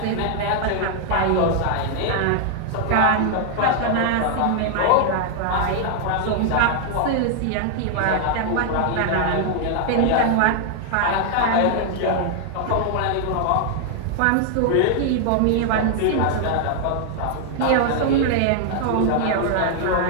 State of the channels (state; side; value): different; both; correlation 0.00